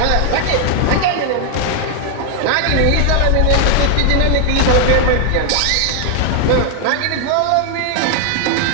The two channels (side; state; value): both; different; correlation 0.00